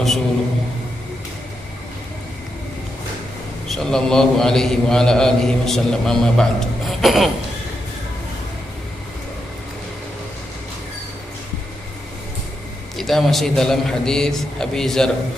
sallallahu alaihi wa ala alihi wasallam, amma ba'd. Kita masih dalam hadis Abi Dzar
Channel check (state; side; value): normal; both; correlation 0.84